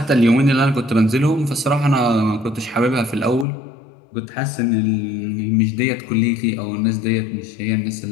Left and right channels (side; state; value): right; drops out; at 3.5 s